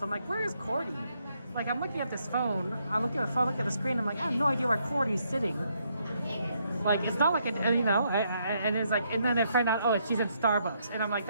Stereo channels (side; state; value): both; inverted; correlation -0.75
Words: I'm like, where is Cordy? Like, I'm looking at this phone. I look at the phone, look at the screen. I'm like, I have no idea where Cordy's sitting. Like, it's not like and it's like, and then I find out, she's in Starbucks, and I'm like,